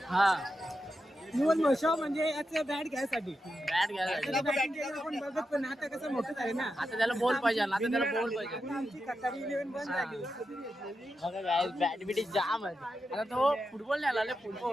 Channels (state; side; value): normal; both; correlation 0.88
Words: हा निवड म्हशा म्हणजे याचं बॅट घ्यायसाठी बॅट घ्यायला batting केलं आपण बघत पण आता कसं मोठं आहे ना आता त्याला बोल पाहिजे आता त्याला बोल पाहिजे आमची कतारी 11 बंद झाली बघा काय बॅट बिटी जाम आहे आता तो फुटबॉल नाही आला